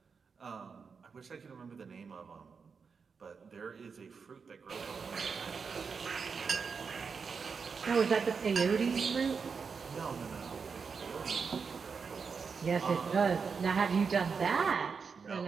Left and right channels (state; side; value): quieter; left; 5.5 dB